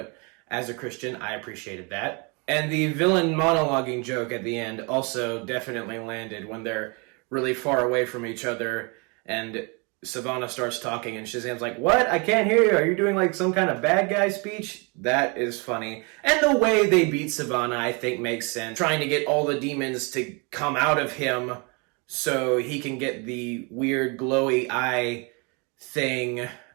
as a Christian, I appreciated that. And the villain monologuing joke at the end also definitely landed when they're really far away from each other and Savannah starts talking and Shazam's like, "What? I can't hear you. Are you doing like some kind of bad guy speech?" That is funny. And the way they beat Savannah, I think, makes sense. Trying to get all the demons to come out of him so he can get the weird glowy eye thing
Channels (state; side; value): quieter; left; 31.6 dB